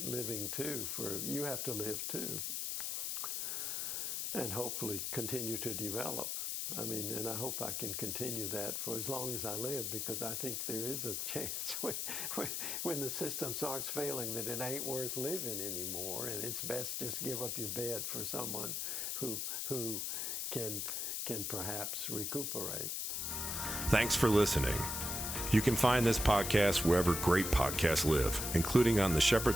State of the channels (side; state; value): left; noise; hiss, 2 dB below the sound